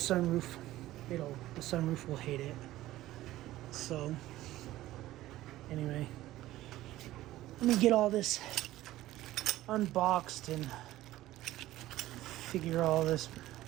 the sunroof will hate it. So anyway, let me get all this unboxed and figure all this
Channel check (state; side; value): quieter; left; 15.6 dB